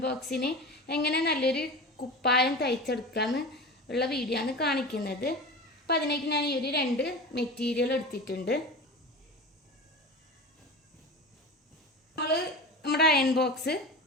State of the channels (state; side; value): normal; both; correlation 0.30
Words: ബോക്സിന് എങ്ങനെ നല്ലൊരു കുപ്പായം തയ്ച്ചെടുക്കാമെന്ന് ഉള്ള വീഡിയോ ആണ് കാണിക്കുന്നത്. അപ്പം അതിലേക്ക് ഞാൻ ഈ ഒരു 2 മെറ്റീരിയൽ എടുത്തിട്ടുണ്ട്. നമ്മൾ നമ്മുടെ അയൺ ബോക്സ്